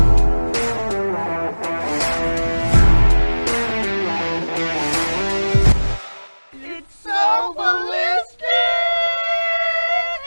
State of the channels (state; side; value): inverted; both; correlation -1.00